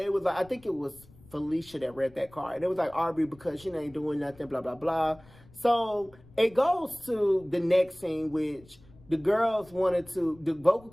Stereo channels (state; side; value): noise; left; rumble, 25 dB below the sound